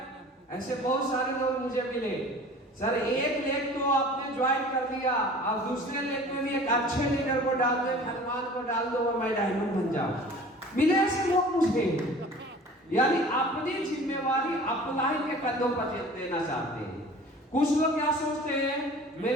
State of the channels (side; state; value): both; normal; correlation 0.44